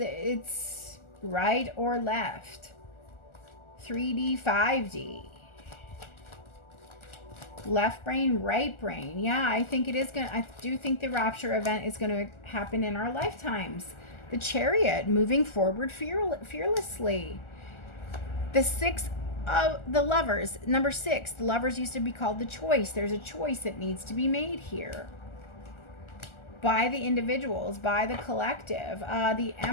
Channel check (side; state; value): right; late; 1.4 ms